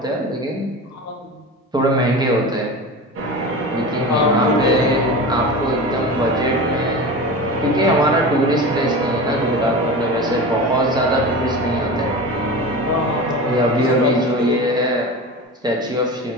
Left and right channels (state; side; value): normal; both; correlation 0.30